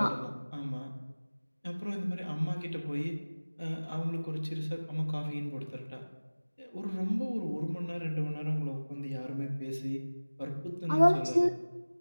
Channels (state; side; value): inverted; both; correlation -1.00